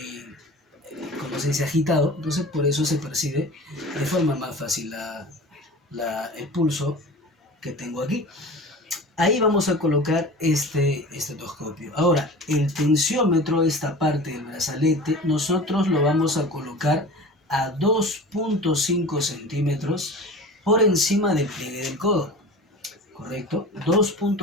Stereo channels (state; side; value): normal; both; correlation 0.36